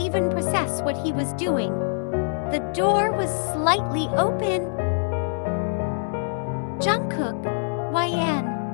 process what he was doing. The door was slightly open. Jungkook, YN,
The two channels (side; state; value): right; silent; 62 dB below the other